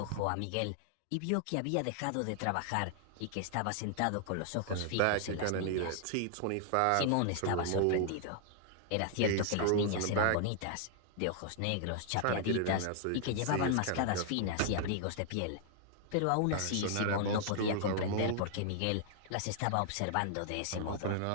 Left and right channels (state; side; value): different; both; correlation -0.01